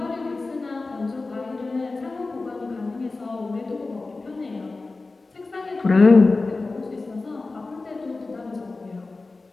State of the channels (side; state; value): right; quieter; 3.6 dB